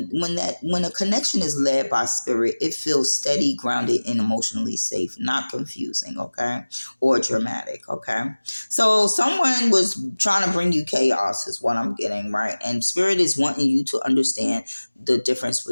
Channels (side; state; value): both; inverted; correlation -1.00